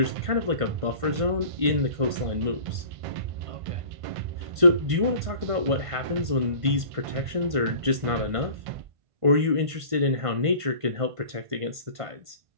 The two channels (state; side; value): late; left; 1.5 ms